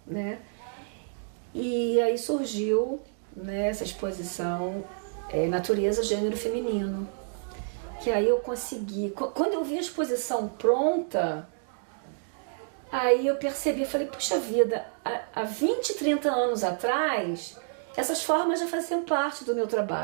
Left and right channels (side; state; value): left; silent; digital silence